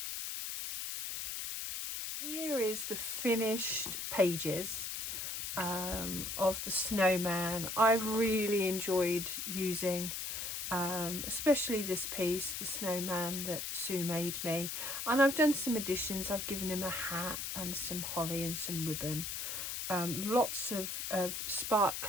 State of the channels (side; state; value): left; noise; hiss, 4 dB below the sound